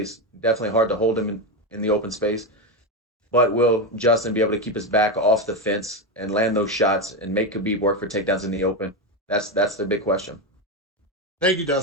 Definitely hard to hold him in the open space. But will Justin be able to keep his back off the fence and land those shots and make Khabib work for takedowns in the open? That's the big question. Thank you,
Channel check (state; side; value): normal; both; correlation 0.11